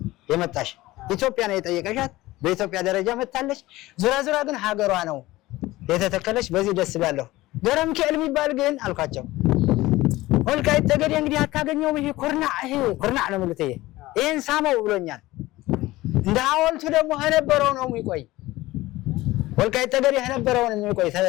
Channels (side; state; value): right; quieter; 18.2 dB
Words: የመጣሽ፣ ኢትዮጵያ ነው የጠየቀሻት፣ በኢትዮጵያ ደረጃ መጣለች። ዙራ ግን ሀገሯ ነው የተተከለች። በዚህ ደስ ይላለሁ። ገረም ከል የሚባል ግን አልኳቸው ወልቃይት ጠገዴ እንግዲህ አታገኘውም። ይሄ ኩርናዕ ነው ማለት ይሄን ሳመው ብሎኛል። እንደ ሐውልቱ ደግሞ ነበረው ነው የሚቆይ ወልቃይት ጠገዴ ነበረው ነው የሚቆይ